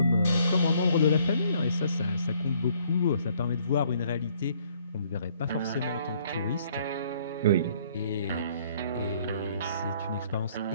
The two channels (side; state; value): both; inverted; correlation -0.63